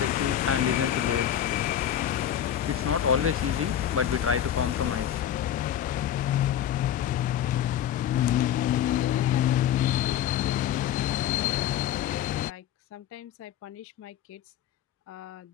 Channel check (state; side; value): quieter; right; 10.5 dB